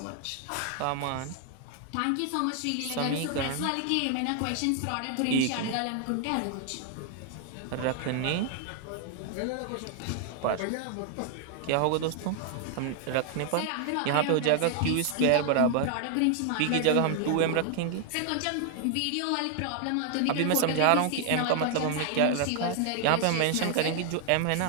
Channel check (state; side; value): different; both; correlation 0.00